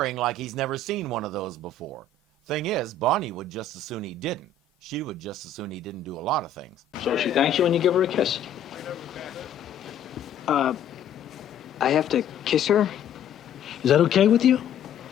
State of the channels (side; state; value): right; quieter; 5.2 dB